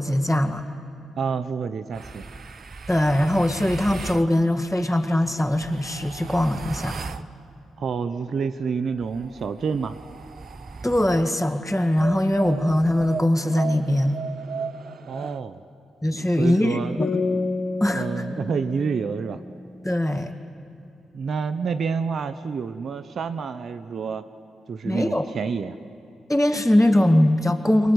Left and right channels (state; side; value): normal; both; correlation 0.93